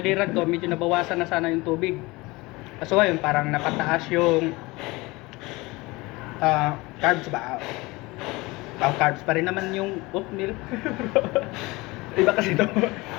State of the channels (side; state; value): right; quieter; 22.6 dB